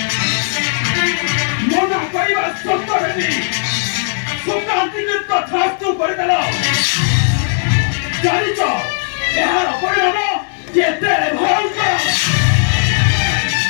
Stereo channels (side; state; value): right; silent; digital silence